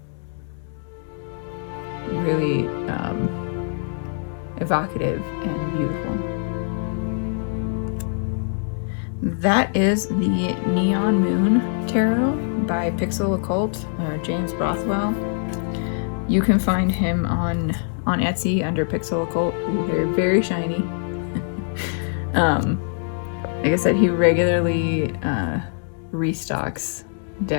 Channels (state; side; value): silent; right; digital silence